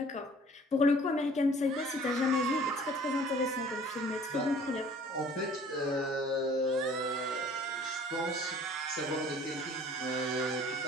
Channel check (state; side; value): normal; both; correlation 0.51